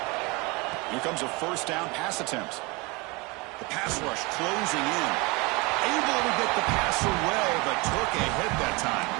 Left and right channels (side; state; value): left; quieter; 26.4 dB